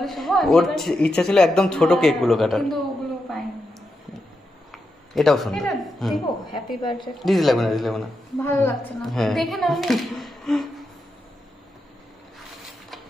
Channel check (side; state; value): both; normal; correlation 0.86